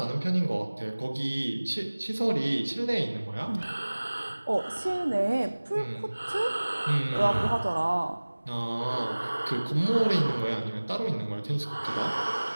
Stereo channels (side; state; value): both; inverted; correlation -1.00